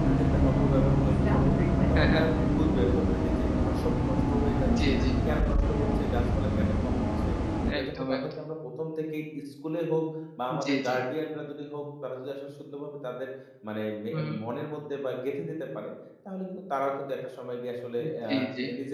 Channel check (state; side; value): identical; both; correlation 1.00